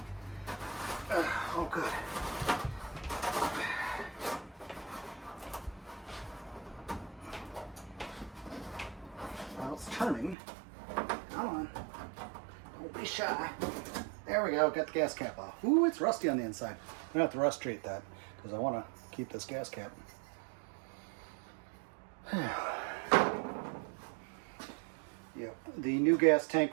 Oh good. Well, it's turning. Come on. Don't be shy. There we go, got the gas cap off. Ooh, it's rusty on the inside. I'm gonna have to rust treat that because I want to keep this gas cap. Yep, the new gas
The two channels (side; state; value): left; drops out; at 10.4 s